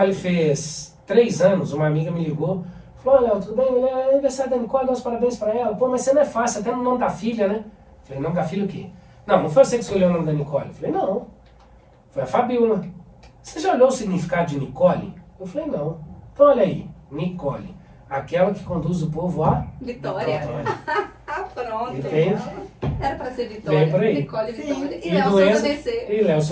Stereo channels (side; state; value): both; identical; correlation 1.00